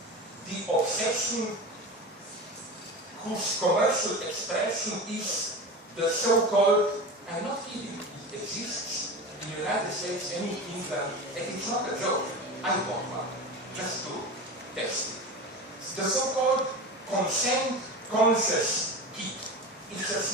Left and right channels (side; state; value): both; normal; correlation 0.28